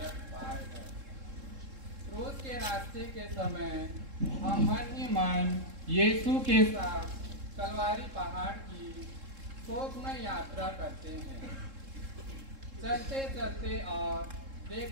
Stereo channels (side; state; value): left; late; 3.7 ms